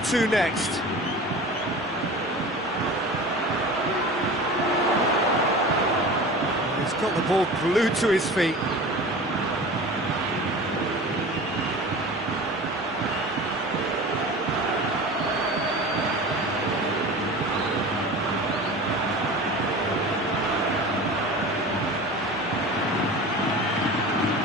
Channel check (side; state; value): both; normal; correlation 0.36